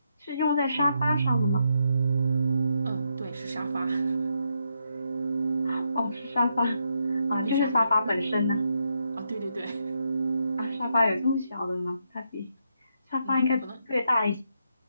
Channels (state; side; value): inverted; both; correlation -0.80